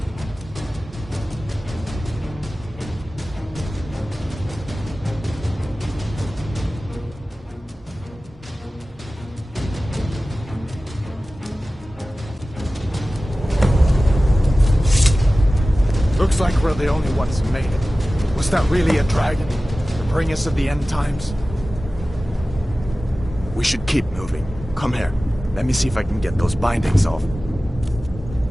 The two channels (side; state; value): both; normal; correlation 0.96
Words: Looks like we're the only ones who made it. Was that really a dragon? To bring us to the end times? We should keep moving. Come here. Let me see if I can get those bindings off.